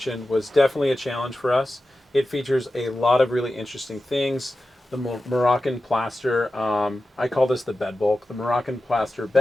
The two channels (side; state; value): both; normal; correlation 0.93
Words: was definitely a challenge for us. It features a lot of really interesting things. The Moroccan plaster, I call this the bed bulk, the Moroccan plaster